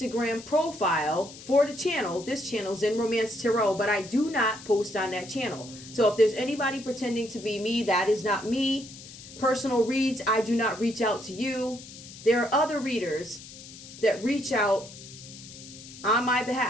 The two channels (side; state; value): left; noise; hiss, 16 dB below the sound